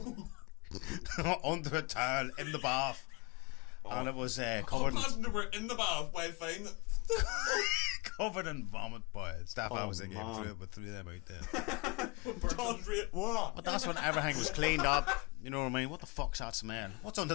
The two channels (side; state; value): right; quieter; 29.0 dB